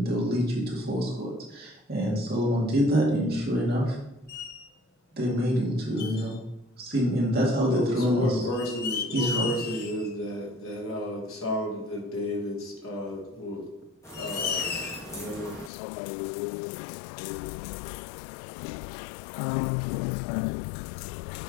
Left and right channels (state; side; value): drops out; right; at 15.7 s